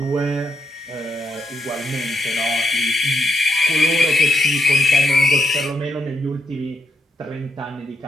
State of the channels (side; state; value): both; normal; correlation 0.79